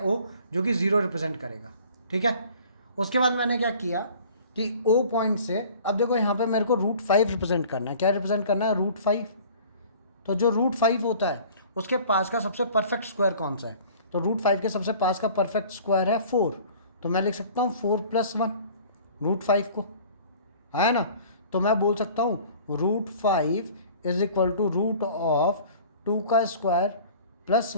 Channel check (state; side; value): inverted; both; correlation -0.48